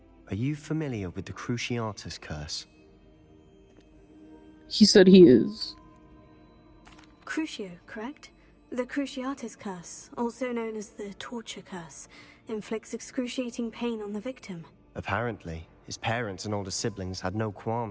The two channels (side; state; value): both; identical; correlation 1.00